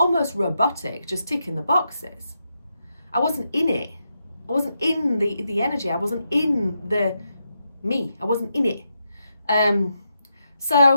robotic, just ticking the boxes. I wasn't in it. I wasn't in the energy. I wasn't in the me. I wasn't in it.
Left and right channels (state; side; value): inverted; both; correlation -0.84